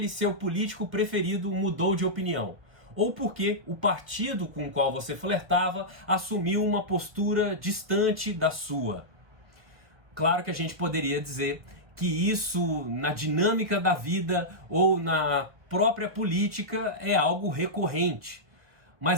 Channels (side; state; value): left; late; 1.4 ms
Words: seu político preferido mudou de opinião, ou por que o partido com o qual você flertava assumiu uma postura distante da sua. Claro que a gente poderia dizer que isso, na dinâmica da vida ou na própria política, é algo recorrente.